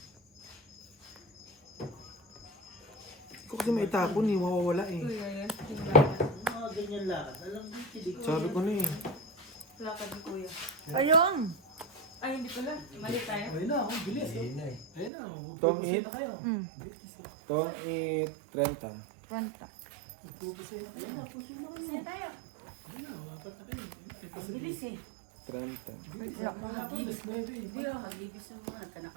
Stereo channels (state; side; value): drops out; left; at 15.1 s